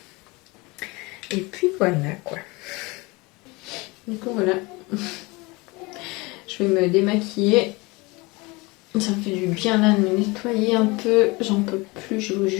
Et puis voilà quoi. Du coup voilà. Je vais me démaquiller. Ça me fait du bien là de me nettoyer un peu. J'en peux plus, je vous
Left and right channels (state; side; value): quieter; right; 24.9 dB